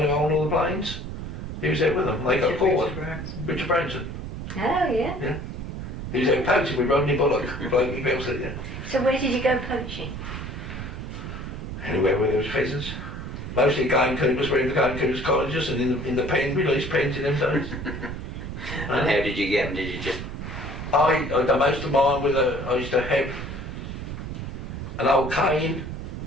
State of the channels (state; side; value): noise; right; rumble, 7 dB below the sound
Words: who owned all the planes. He was out with them. They got caught. Richard Branson. Oh yeah. Yeah. He was out poaching with Rodney Bullock. Yeah. So where did you go poaching? Anywhere where there was pheasants. Mostly gamekeepers were in the gamekeepers' cottages and in the pen, released pens in them days. And how did you get them? Did you just... I done most of mine with I used to have an old cane